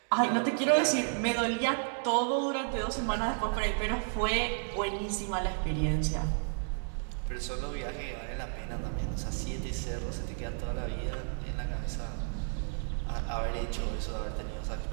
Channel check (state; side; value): silent; left; 56 dB below the other